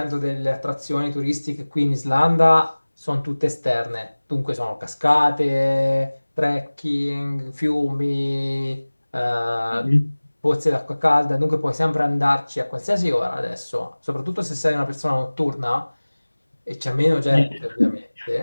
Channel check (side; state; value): both; inverted; correlation -1.00